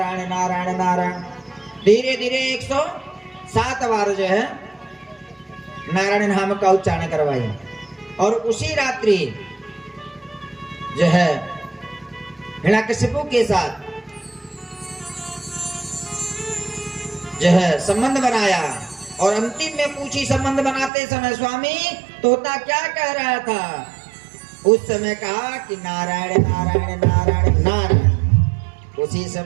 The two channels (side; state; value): left; drops out; at 20.9 s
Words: नारायण नारायण। धीरे धीरे 107 बार जो है नारायण नाम का उच्चारण करवाई। और उसी रात्रि जो है हिरण्यकश्यपु के साथ जो है संबंध बनाया। और अंतिम में पूछी संबंध बनाते समय स्वामी तोता क्या कह रहा था? उस समय कहा कि नारायण नारायण नारायण नारायण। उसी